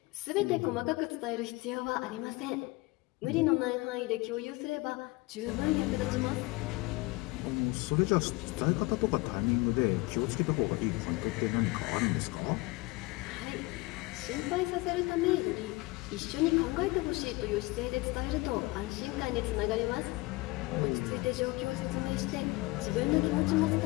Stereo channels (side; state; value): right; quieter; 22.6 dB